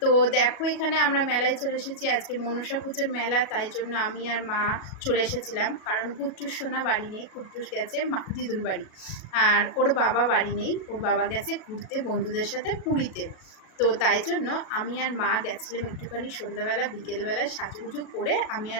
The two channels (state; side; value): late; right; 37 ms